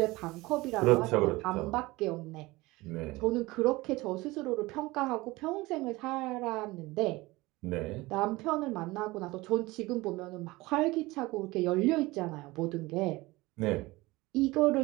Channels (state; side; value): quieter; left; 20.9 dB